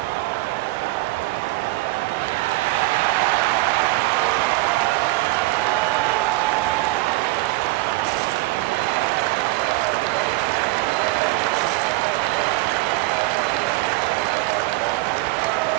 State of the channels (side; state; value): left; quieter; 19.8 dB